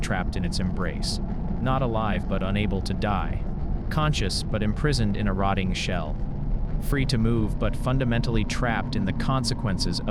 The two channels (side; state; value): both; identical; correlation 1.00